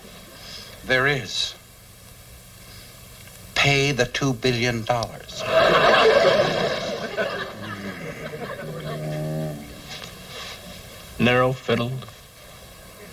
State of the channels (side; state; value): both; identical; correlation 1.00